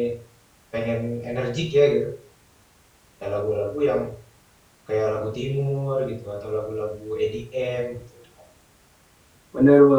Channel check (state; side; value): identical; both; correlation 1.00